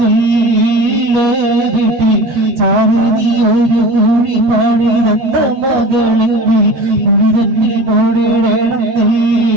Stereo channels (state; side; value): late; left; 14 ms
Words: ചാരതി ഒരു കുഴി പണിതന്ന മകളെങ്കിൽ കുഴി തന്നിൽ